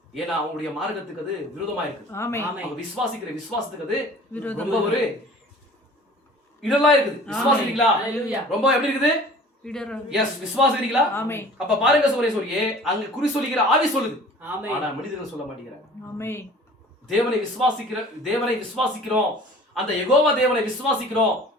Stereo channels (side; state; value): both; normal; correlation 0.46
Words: ஏன்னா அவங்களுடைய மார்க்கத்துக்கு அது விரோதமா இருக்கு. அவங்க விசுவாசிக்கிற விசுவாசத்துக்கு அது ரொம்ப ஒரு இடலா இருக்குது. விசுவாசிக்கிறீங்களா? ரொம்ப எப்படி இருக்குது? விசுவாசிக்கிறீங்களா? அப்ப பாருங்க சகோதரியே, அங்க குறி சொல்லுகிற ஆவி சொல்லுது, ஆனா மனிதர்கள் சொல்ல மாட்டேங்கிறாங்க. தேவனை விசுவாசிக்கிறோம், அந்த யெகோவா தேவனை விசுவாசிக்கிறோம்,